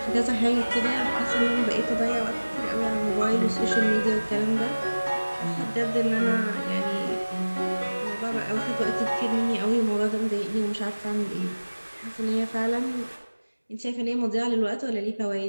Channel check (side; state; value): both; inverted; correlation -1.00